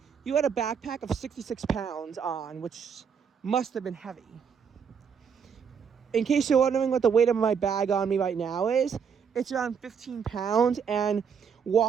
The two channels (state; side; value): quieter; left; 6.8 dB